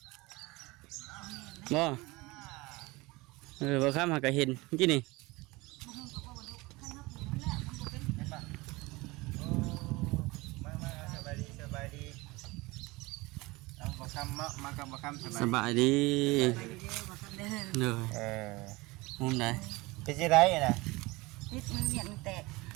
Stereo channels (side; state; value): left; quieter; 22.5 dB